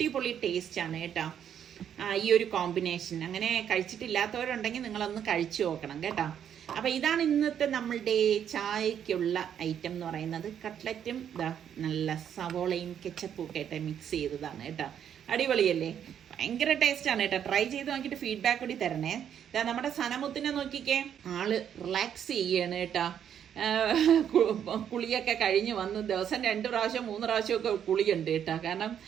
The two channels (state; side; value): quieter; left; 9.0 dB